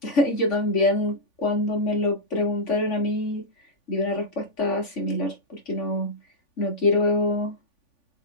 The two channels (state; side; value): late; right; 3.5 ms